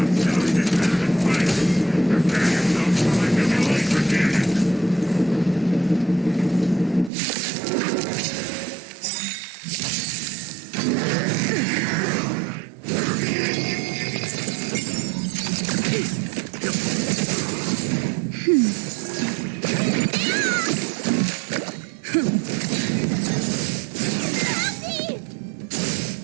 selling this kind of violence, prepare yourself for my delayed forgetting.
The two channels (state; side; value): drops out; left; at 7.1 s